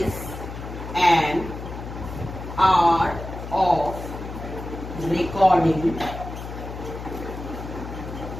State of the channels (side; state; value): left; noise; hum, 9 dB below the sound